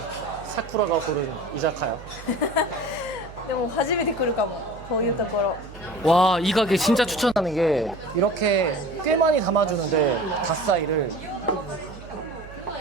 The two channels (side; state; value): right; noise; hum, 16 dB below the sound